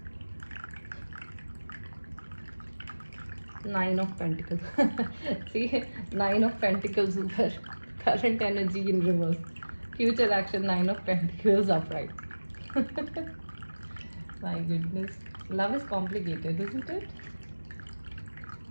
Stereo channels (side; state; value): both; inverted; correlation -1.00